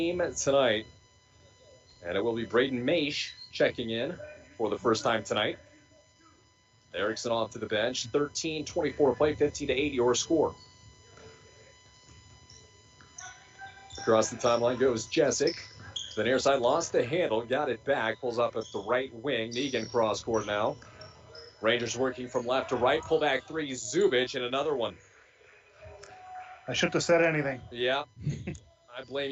tonight. And it will be Braden Maish checking in for the first time tonight. Erickson off to the bench. 13:24 to play, 15-8 your score. Across the timeline goes Jessic. The near side lost the handle, got it back, pulls up at the right wing. Negan cross court now. Rangers working from left to right. Pull back 3, Zubich, and another one. I shouldn't have said anything. Yeah, I blame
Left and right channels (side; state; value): both; identical; correlation 1.00